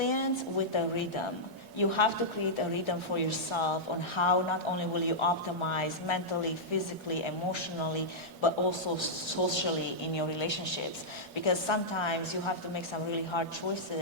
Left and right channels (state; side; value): normal; both; correlation -0.10